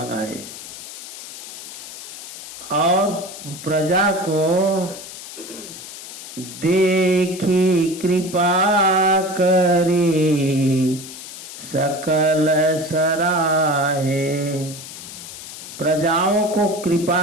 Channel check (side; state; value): left; noise; hiss, 12 dB below the sound